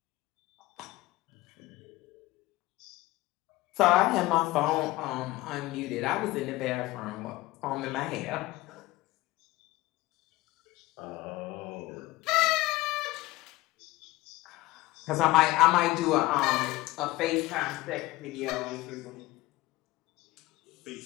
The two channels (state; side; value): quieter; right; 19.2 dB